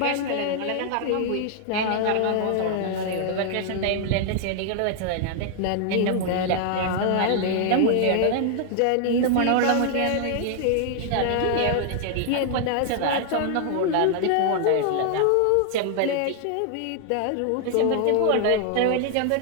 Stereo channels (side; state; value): both; different; correlation 0.00